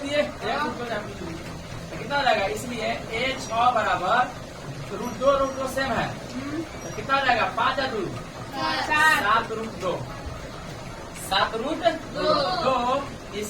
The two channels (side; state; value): both; identical; correlation 1.00